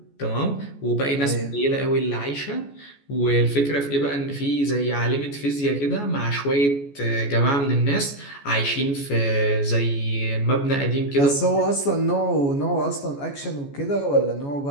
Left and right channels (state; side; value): late; right; 14 ms